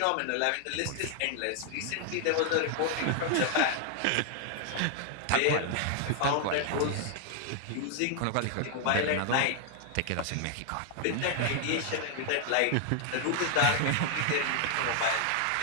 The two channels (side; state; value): both; different; correlation 0.00